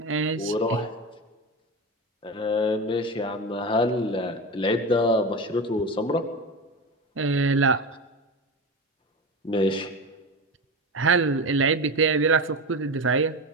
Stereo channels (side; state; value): both; normal; correlation 0.23